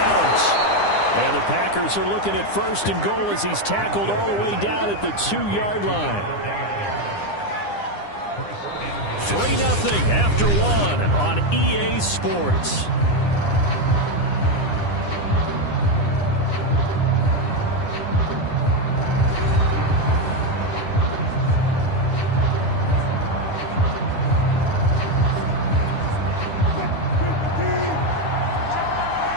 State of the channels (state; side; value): late; right; 9.9 ms